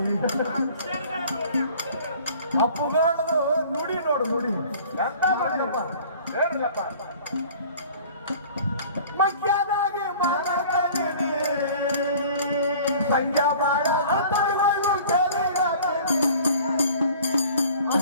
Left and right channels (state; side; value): inverted; both; correlation -0.48